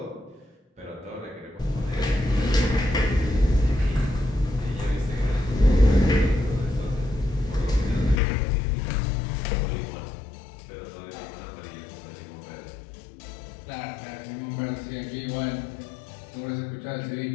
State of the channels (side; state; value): right; drops out; at 8.2 s